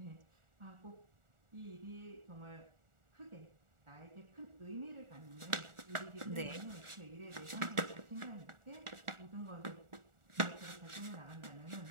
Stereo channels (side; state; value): left; late; 1.4 ms